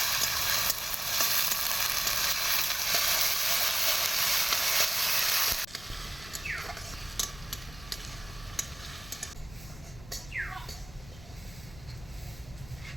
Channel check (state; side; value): noise; left; rumble, 18 dB below the sound